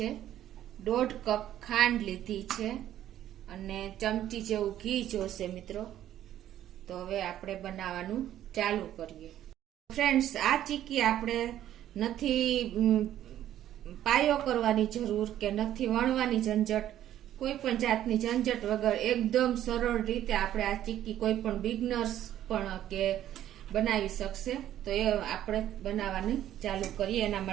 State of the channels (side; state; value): left; quieter; 12.0 dB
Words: 1.5 કપ ખાંડ લીધી છે અને ચમચી જેવું ઘી જોશે મિત્રો। તો હવે આપણે બનાવવાનું ચાલુ કરીએ। ફ્રેન્ડ્સ, આ ચીક્કી આપણે નથી પાયો કરવાની જરૂર કે નથી વણવાની ઝંઝટ, કોઈ પણ જાતની ઝંઝટ વગર એકદમ સરળ રીતે આપણે આ ચીક્કી કોઈ પણ બિગનર્સ પણ કે બનાવી શકશે। તો એ આપણે બનાવવાની ચાલુ કરીએ। એના